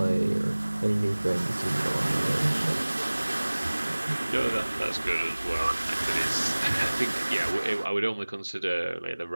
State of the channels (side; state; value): both; inverted; correlation -1.00